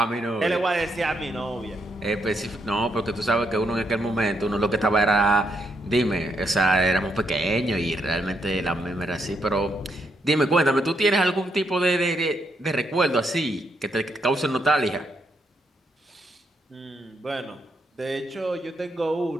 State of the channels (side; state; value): both; normal; correlation 0.78